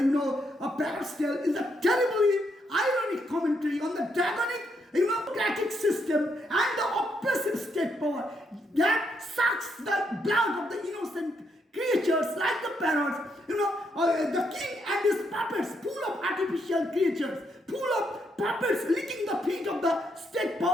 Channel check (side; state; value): both; normal; correlation 0.77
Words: Parrot's Tale is a terribly ironic commentary on the draconic democratic system and the oppressive state power that sucks the blood of the innocent creatures like the parrots. The king and his puppets, full of artificial creatures, full of puppets licking the feet of the state